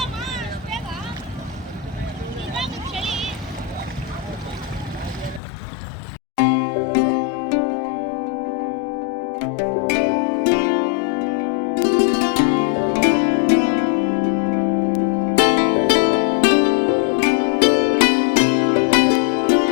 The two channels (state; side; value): drops out; right; at 5.4 s